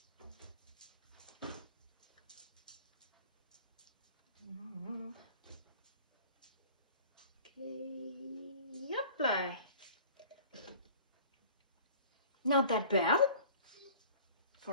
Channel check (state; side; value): inverted; both; correlation -0.46